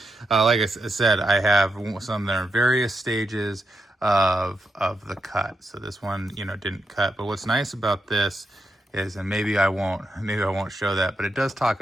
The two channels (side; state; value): both; normal; correlation 0.83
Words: Like I said, I have some that are in various stages of the cut. So this one, you know, didn't cut. But what's nice about this is, and maybe I won't show that, but it does talk